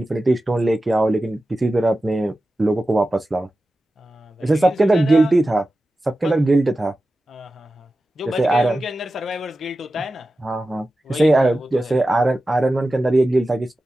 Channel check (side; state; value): both; normal; correlation 0.93